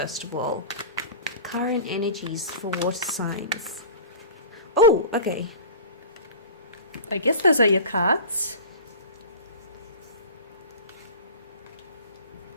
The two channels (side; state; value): both; inverted; correlation -0.36